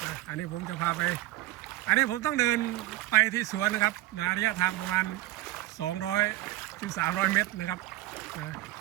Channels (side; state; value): left; quieter; 16.3 dB